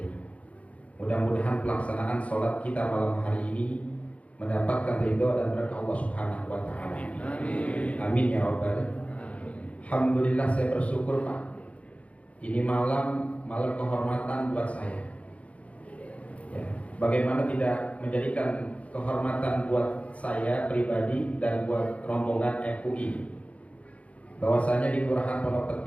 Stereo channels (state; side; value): late; right; 0.065 ms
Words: Mudah-mudahan pelaksanaan sholat kita malam hari ini mendapatkan ridho dan berkah Allah Subhanahu wa Ta'ala. Amin. Amin ya Rabbal. Alhamdulillah, saya bersyukur Pak. Ini malam kehormatan buat saya. Ya, bagaimana tidak menjadikan kehormatan buat saya pribadi dan buat rombongan FUI. Bahwasanya di Kelurahan Pondok